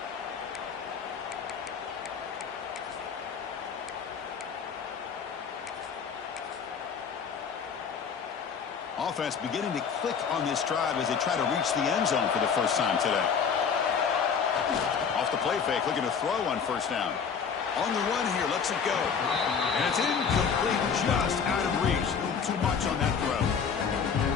Offense beginning to click on this drive as they try to reach the end zone for the first time today. Off the play fake, looking to throw on first down. On the run here, lets it go. And it's incomplete.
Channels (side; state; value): right; quieter; 6.5 dB